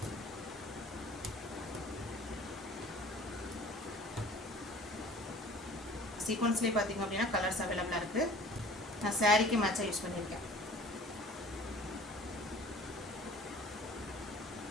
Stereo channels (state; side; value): normal; both; correlation 0.47